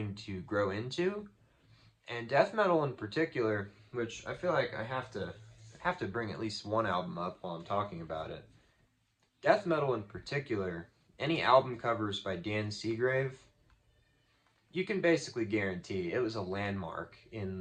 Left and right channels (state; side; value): identical; both; correlation 1.00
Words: to grow into. And death metal in particular, which I feel like I have to bring at least one album up while I'm talking about it. Death metal in particular, any album covers by Dan Seagrave, you can basically guarantee it was a landmark in